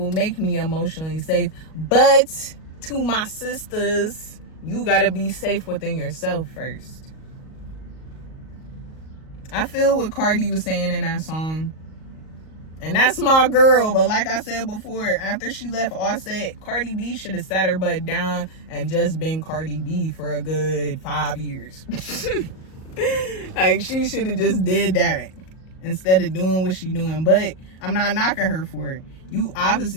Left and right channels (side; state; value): right; late; 38 ms